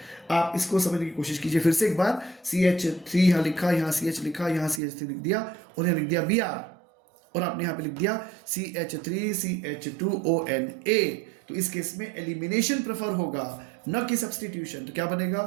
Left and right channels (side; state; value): left; drops out; at 4.8 s